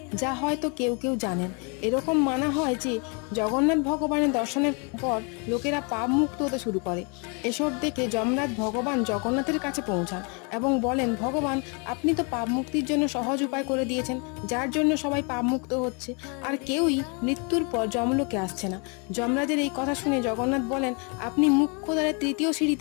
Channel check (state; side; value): quieter; right; 34.7 dB